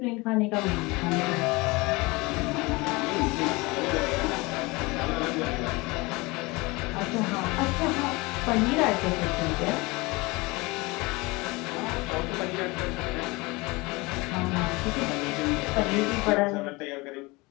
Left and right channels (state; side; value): quieter; right; 24.1 dB